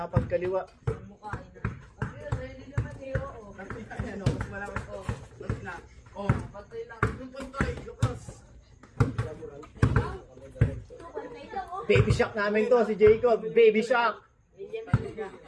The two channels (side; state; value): both; identical; correlation 1.00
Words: Baby Shark namin to, si Jacob. Baby Shark.